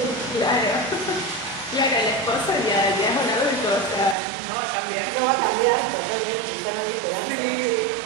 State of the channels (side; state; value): left; drops out; at 4.2 s